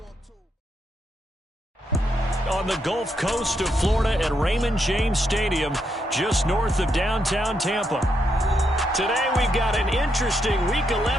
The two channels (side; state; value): both; normal; correlation 0.80